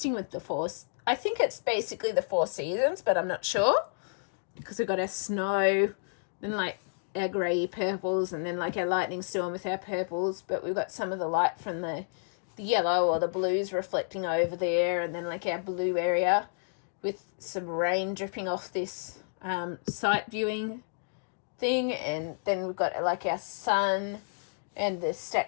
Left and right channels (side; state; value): right; silent; digital silence